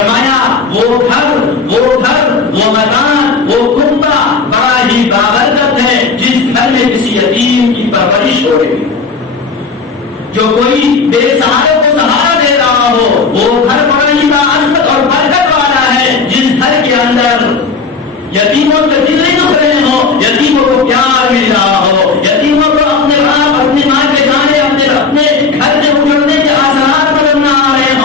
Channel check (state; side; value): quieter; right; 4.8 dB